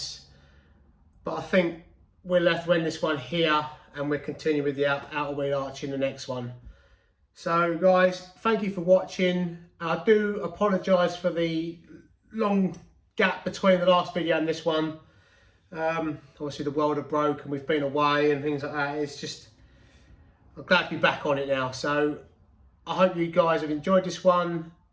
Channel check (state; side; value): identical; both; correlation 1.00